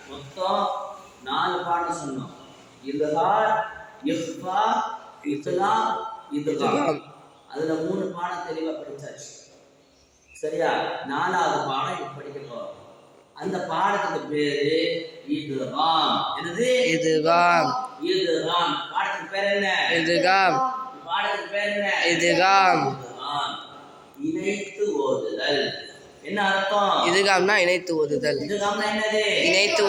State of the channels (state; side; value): identical; both; correlation 1.00